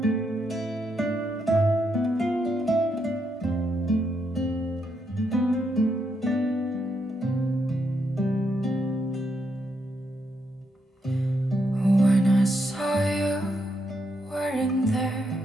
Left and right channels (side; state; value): both; normal; correlation 0.79